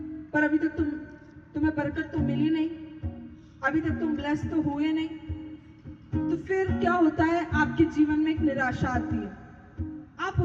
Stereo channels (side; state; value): both; identical; correlation 1.00